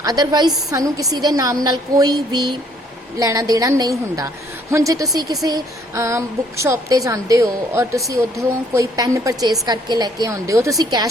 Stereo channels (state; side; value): normal; both; correlation 0.63